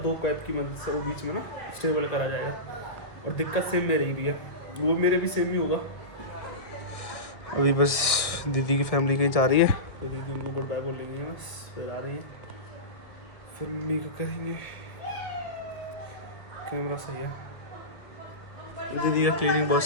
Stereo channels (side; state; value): right; late; 1.5 ms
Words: 2 कैप की मदद से वो बीच में ना स्टेबल करा जाएगा। और दिक्कत सेम मेरे ही है, वो मेरे भी सेम ही होगा। अभी बस दीदी की फैमिली कहीं जा रही है, तो दीदी उनको गुड बाय बोल रही है, बस फिर आ रही है, फिर मम्मी का करेंगे। कैमरा सही है, दीदी का क्लीनिंग बहुत